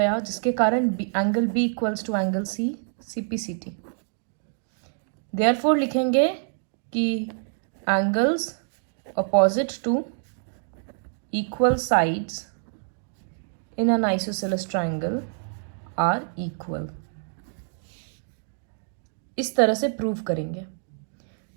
जिसके कारण angle B equals to angle C, CPCT. Therefore लिखेंगे कि angles opposite to equal sides in an isosceles triangle are equal. इस तरह से प्रूव करेंगे।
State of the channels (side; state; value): left; silent; digital silence